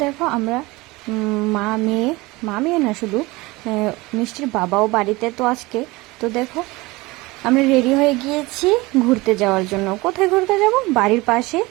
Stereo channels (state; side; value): quieter; left; 22.2 dB